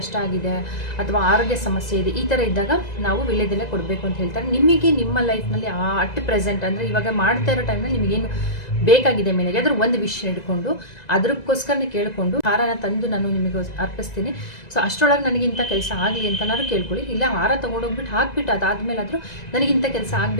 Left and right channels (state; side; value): late; right; 1.9 ms